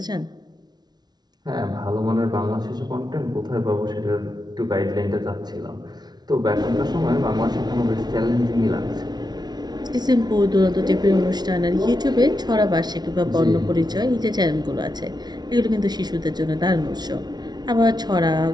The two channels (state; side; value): late; left; 0.19 ms